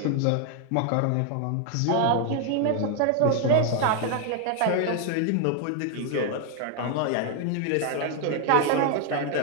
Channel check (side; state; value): both; different; correlation 0.00